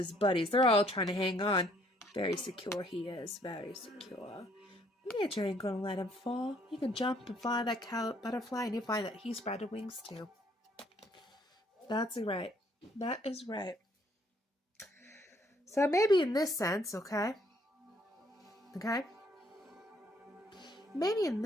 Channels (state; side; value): normal; both; correlation 0.65